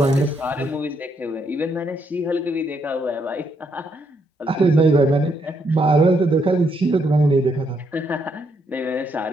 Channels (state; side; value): normal; both; correlation 0.75